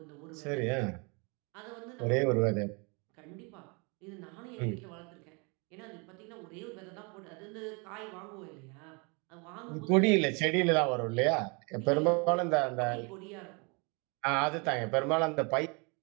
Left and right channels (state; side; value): quieter; left; 31.7 dB